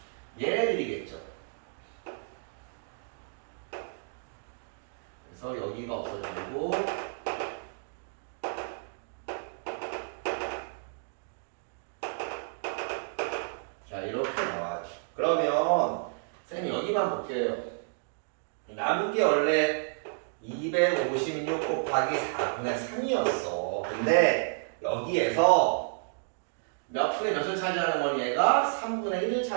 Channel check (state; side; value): silent; left; digital silence